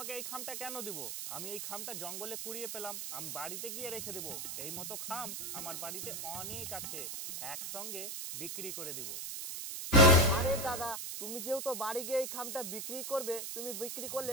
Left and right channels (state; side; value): noise; right; hiss, 5 dB below the sound